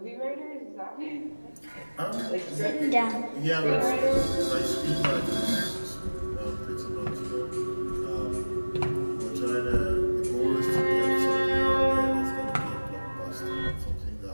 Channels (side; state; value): both; inverted; correlation -1.00